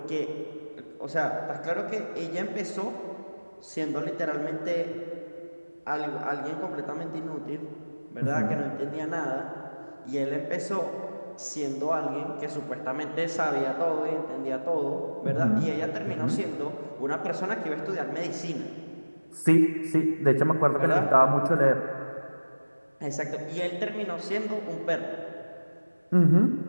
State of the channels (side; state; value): both; inverted; correlation -1.00